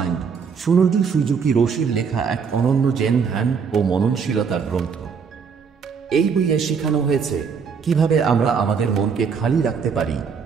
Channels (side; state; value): left; quieter; 6.1 dB